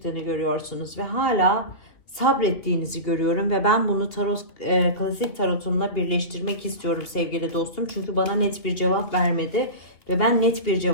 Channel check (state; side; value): late; right; 2.8 ms